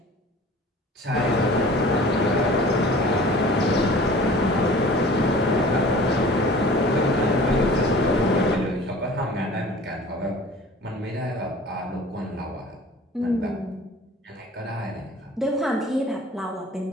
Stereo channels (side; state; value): both; normal; correlation 0.45